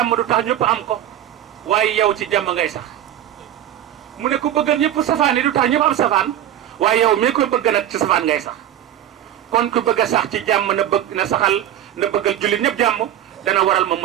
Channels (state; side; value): quieter; left; 11.6 dB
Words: du tax ñëpp am ko waaye yow ci jàmm ngay sax mu ne ku bëggal ñëpp safaan yi du tax ñëpp am safaan waaye yow mii koy bëgg nag ci safaan ngay sax kon ku bëgg a sax ci jàmm na saxal na bëggal jullit ñëpp jàmm dana waral moom